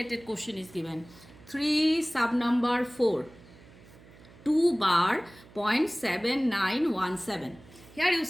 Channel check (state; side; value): noise; right; hum, 23 dB below the sound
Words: question is given. 3 sub number 4. 2 bar 0.7917. Here you